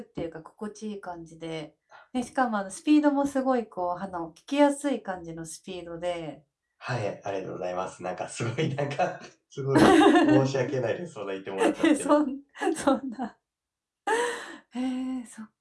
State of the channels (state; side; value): identical; both; correlation 1.00